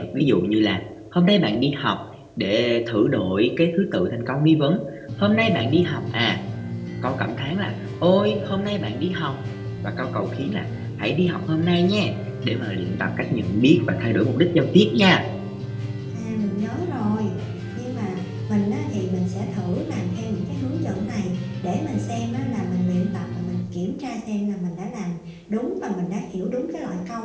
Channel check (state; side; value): identical; both; correlation 1.00